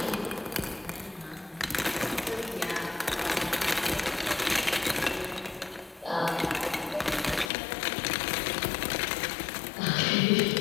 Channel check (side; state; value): right; drops out; at 7.5 s